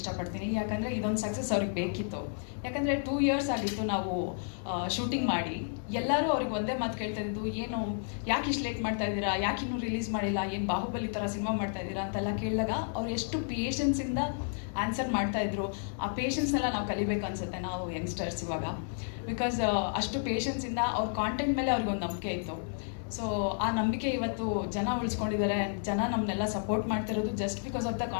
ಯಾಕಂದರೆ ಇದೊಂದು ಸಕ್ಸಸ್ ಅವ್ರಿಗೆ ಬೇಕಿತ್ತು. ಯಾಕಂದರೆ 2 years ಆಗಿತ್ತು ನಾವು ಶೂಟಿಂಗ್ ಮಾಡಿ. ಎಲ್ಲರೂ ಅವ್ರಿಗೆ ಒಂದೇ ಮಾತು ಕೇಳ್ತಾ ಇದ್ದು, ಏನು ಯಾಕೆ ಇಷ್ಟು ಲೇಟ್ ಮಾಡ್ತಾ ಇದ್ದೀರಾ, ಯಾಕೆ ಇನ್ನೂ ರಿಲೀಸ್ ಮಾಡಿಲ್ಲ, ಏನು ಬಾಹುಬಲಿ ಥರ ಸಿನಿಮಾ ಮಾಡ್ತಾ ಇದ್ದೀರಾ ಅಂತೆಲ್ಲ ಕೇಳಿದಾಗ ಅವ್ರು ಎಷ್ಟು ಪೇಷನ್ಸಿಂದ ಆನ್ಸರ್ ಮಾಡ್ತಾಯಿದ್ರು. ಆ ಪೇಷನ್ಸ್ನೆಲ್ಲ ನಾವು ಕಲಿಬೇಕು ಅನಿಸುತ್ತೆ ನಾವು ಯಂಗ್ಸ್ಟರ್ಸ್ ಇವಾಗ. ಬಿಕಾಸ್ ಅಷ್ಟು ಪೇಷನ್ಸಿಂದ ಅವ್ರ ಕಾಂಟೆಂಟ್ ಮೇಲೆ ಅವ್ರಿಗೊಂದು ನಂಬಿಕೆ ಇತ್ತು. ಸೊ ಆ ನಂಬಿಕೆ ಇವತ್ತು ಜನ ಉಳಿಸ್ಕೊಂಡಿದ್ದಾರೆ. ಜನ ನಮ್ಮನ್ನೆಲ್ಲ ಸಪೋರ್ಟ್ ಮಾಡ್ತಿರೋದು just because of the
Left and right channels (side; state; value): right; silent; 57 dB below the other